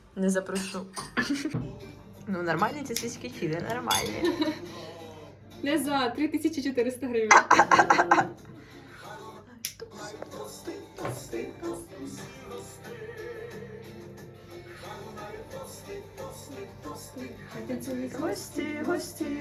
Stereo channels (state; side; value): identical; both; correlation 1.00